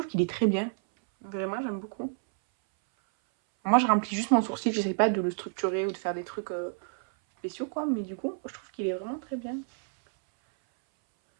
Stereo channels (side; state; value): left; silent; 58 dB below the other